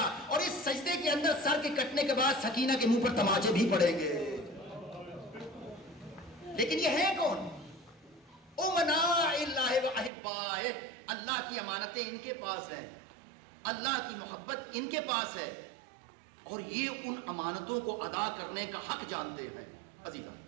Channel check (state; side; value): drops out; left; at 10.1 s